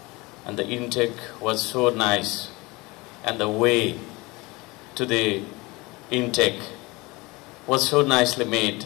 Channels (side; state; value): right; quieter; 23.6 dB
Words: And the intake was so nice, and the way to the intake was so nicely made.